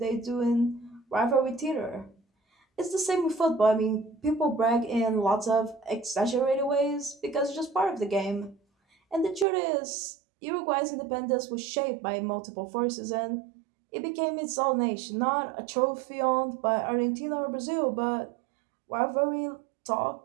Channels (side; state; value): left; drops out; at 9.5 s